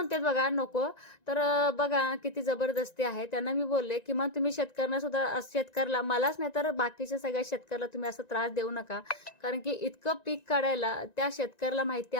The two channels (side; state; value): right; late; 1.9 ms